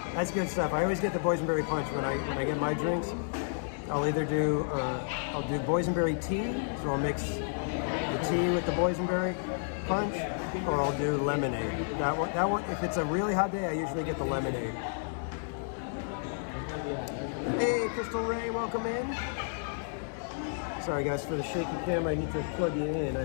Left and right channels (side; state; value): right; silent; 57 dB below the other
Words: That's good stuff. I always get the boysenberry punch when I get my drinks. I'll either do boysenberry tea, so I'll mix the tea with the boysenberry punch, or I'll do lemonade. That one, if it's a really hot day, I usually get the lemonade. Hey, Crystal Ray, welcome in. Sorry guys for the shaky camera, I need to plug you in.